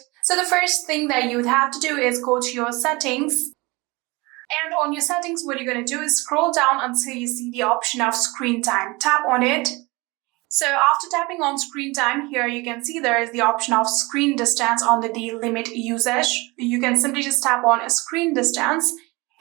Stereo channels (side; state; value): left; quieter; 24.4 dB